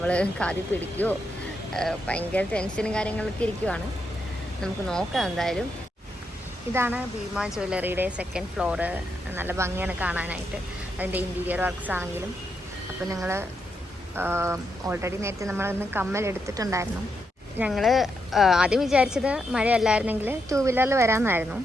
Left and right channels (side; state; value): both; normal; correlation 0.82